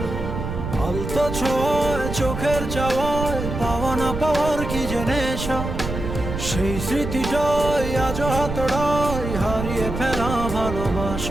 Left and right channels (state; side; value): noise; right; rumble, 5 dB below the sound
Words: আলতো ছোঁয়ায় চোখের চাওয়ায় পাওয়া না পাওয়ার কি যে নেশা, সেই স্মৃতিটাই আজ হাতড়ায় হারিয়ে ফেলা